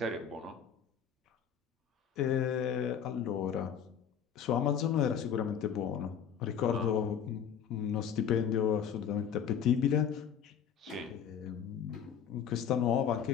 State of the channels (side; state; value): right; quieter; 8.1 dB